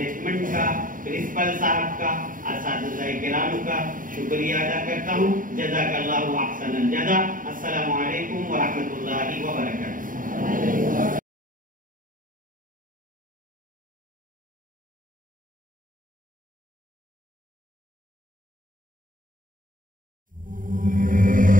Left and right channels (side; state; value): left; late; 0.39 ms